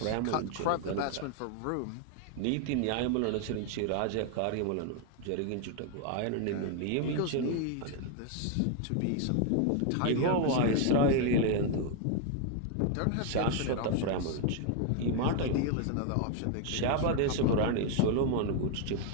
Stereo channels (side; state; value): both; different; correlation 0.00